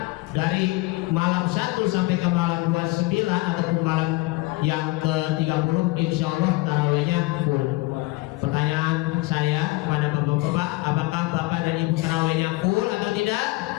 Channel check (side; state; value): right; quieter; 21.7 dB